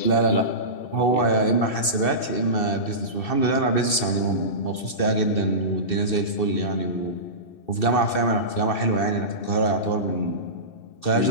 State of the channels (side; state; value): right; late; 2.6 ms